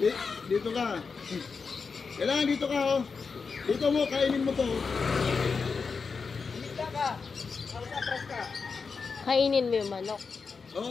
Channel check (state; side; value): quieter; right; 5.1 dB